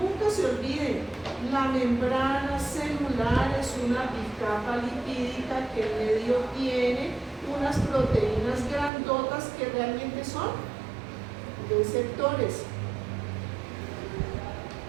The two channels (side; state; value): left; drops out; at 8.9 s